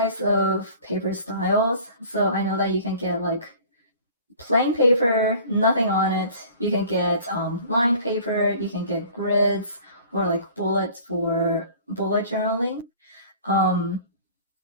of paper styles. So I know that you can get like plain paper, nothing on it. You can get lined paper. You can get grids or like bullets for bullet journaling. Um,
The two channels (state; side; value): inverted; both; correlation -0.47